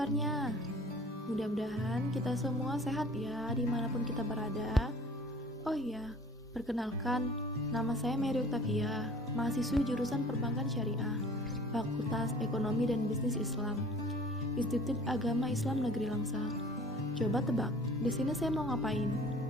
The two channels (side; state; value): both; normal; correlation 0.48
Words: Mudah-mudahan kita semua sehat ya dimanapun kita berada. Oh iya, perkenalkan, nama saya Mary Octavia, mahasiswi jurusan Perbankan Syariah, Fakultas Ekonomi dan Bisnis Islam, Institut Agama Islam Negeri Langsa. Coba tebak, di sini saya mau ngapain?